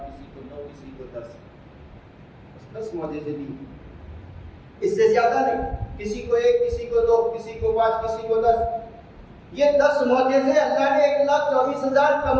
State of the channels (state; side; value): identical; both; correlation 1.00